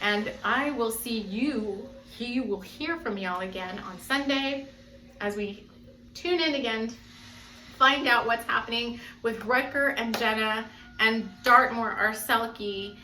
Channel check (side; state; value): both; identical; correlation 1.00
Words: And I will see you will hear from y'all again on Sunday as we tune in again, find out what's happening with Rutger and Jenna and Dartmoor Arselke